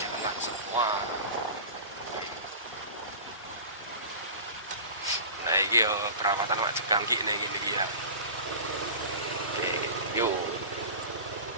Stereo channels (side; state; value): both; inverted; correlation -0.34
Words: semua. Nah ini yo perawatan wajib gangki nih gini ya. Oke, yuk.